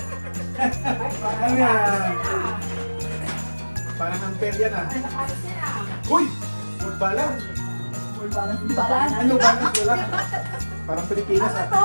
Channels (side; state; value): both; inverted; correlation -1.00